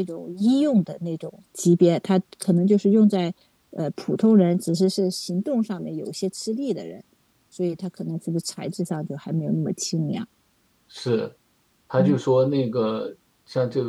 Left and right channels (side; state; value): both; identical; correlation 1.00